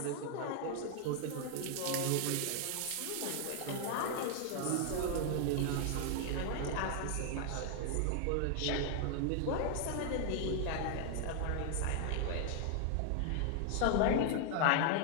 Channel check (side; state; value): both; different; correlation 0.00